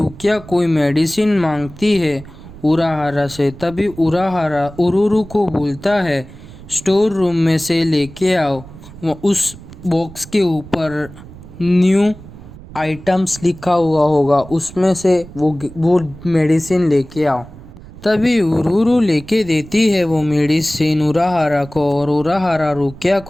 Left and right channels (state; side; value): noise; right; rumble, 17 dB below the sound